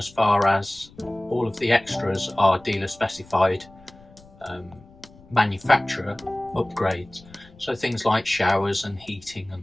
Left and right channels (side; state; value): left; noise; rumble, 24 dB below the sound